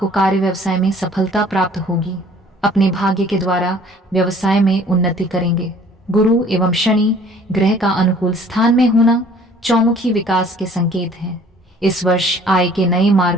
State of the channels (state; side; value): normal; both; correlation 0.54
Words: कार्य व्यवसाय में सफलता प्राप्त होगी। अपने भाग्य के द्वारा व्यवसाय में उन्नति करेंगे। गुरु एवं शनि ग्रह का अनुकूल स्थान में होना चौमुखी विकास के संकेत हैं। इस वर्ष आय के नए